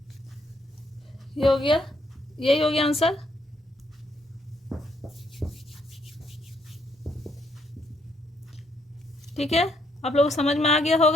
ये हो गया, यही हो गया आंसर। ठीक है, आप लोगों को समझ में आ गया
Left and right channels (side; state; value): both; normal; correlation 0.72